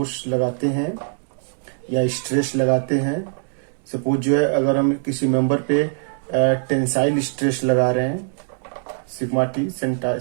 लगाते हैं या स्ट्रेस लगाते हैं, सपोज जो है अगर हम किसी मेंबर पे टेंसाइल स्ट्रेस लगा रहे हैं, सिग्मा टी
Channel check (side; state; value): left; silent; digital silence